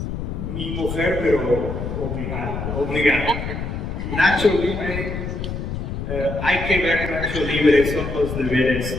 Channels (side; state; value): left; noise; rumble, 5 dB below the sound